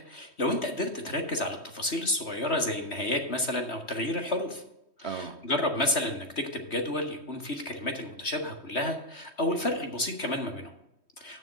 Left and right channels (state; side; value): late; right; 3.2 ms